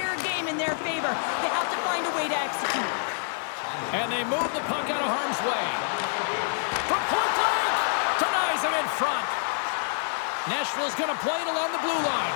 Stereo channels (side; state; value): right; silent; digital silence